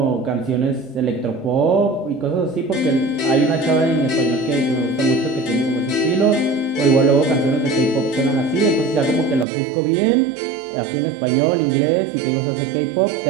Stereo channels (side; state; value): left; drops out; at 9.5 s